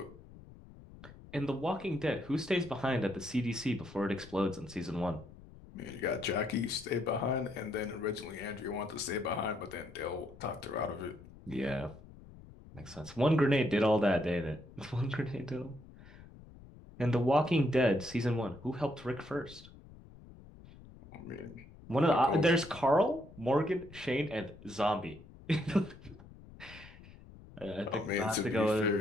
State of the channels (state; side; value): noise; left; rumble, 19 dB below the sound